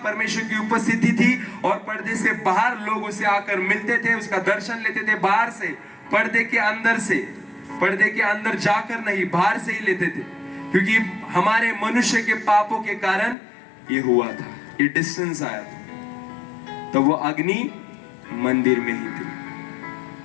परमेश्वर की उपस्थिति थी, और पर्दे से बाहर लोग उसे आकर मिलते थे, उसका दर्शन लेते थे बाहर से, पर्दे के अंदर से, पर्दे के अंदर जाकर नहीं, बाहर से ही लेते थे, क्योंकि हमारे मनुष्य के पापों के कारण ये हुआ था, ये डिस्टेंस आया था। तो वो अग्नि मंदिर में ही थी।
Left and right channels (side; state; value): right; drops out; at 13.4 s